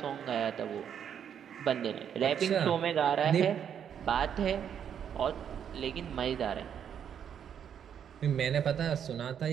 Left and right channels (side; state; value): left; quieter; 8.5 dB